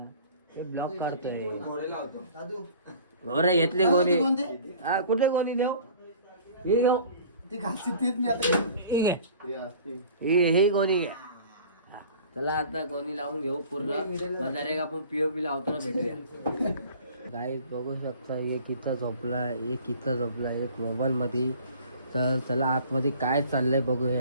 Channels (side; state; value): both; inverted; correlation -0.47